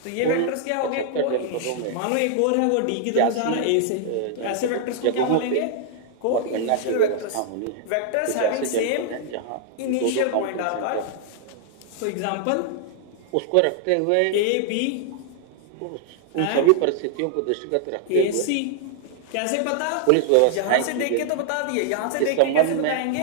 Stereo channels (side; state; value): both; different; correlation 0.00